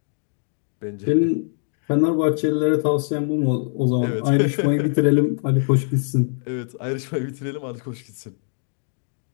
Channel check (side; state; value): right; silent; digital silence